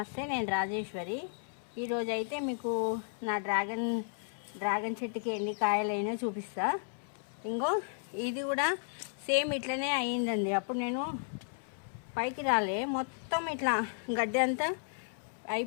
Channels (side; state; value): right; silent; 55 dB below the other